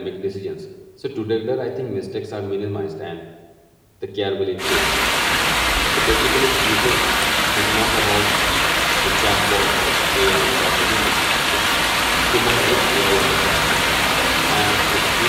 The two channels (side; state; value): both; identical; correlation 1.00